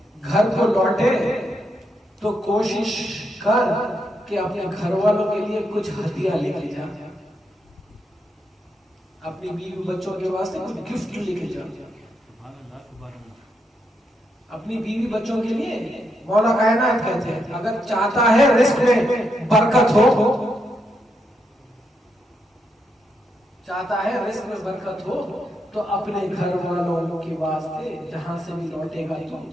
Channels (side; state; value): both; normal; correlation 0.81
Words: घर को लौटे तो कोशिश कर कि अपने घर वालों के लिए कुछ हदिया लेके जा, अपनी बीवी बच्चों के वास्ते कुछ गिफ्ट लेके जा, अपनी बीवी बच्चों के लिए। मौला कायनात कहते हैं अगर चाहता है रिस्क में बरकत हो, चाहता है रिस्क में बरकत हो, तो अपने घर वालों के वास्ते जहां से भी लौटेगा तो